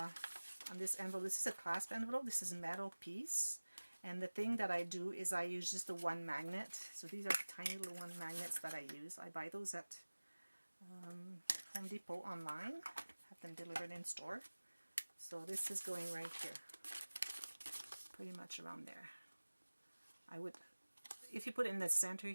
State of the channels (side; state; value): both; inverted; correlation -1.00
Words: this envelope. This is a clasp envelope. This is a metal piece. And the thing that I do is I use just the one magnet. So these are the tiny little one magnets that I use. I buy those at Home Depot online. Have them delivered in store. So this is going right here. Pretty much around there. I would, if you put it in the center